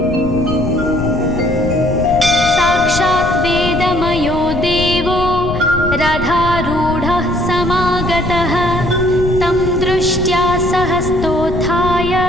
रथारूढः समागतः तं दृष्ट्या सहस्तोत्थाय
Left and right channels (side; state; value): left; noise; rumble, 7 dB below the sound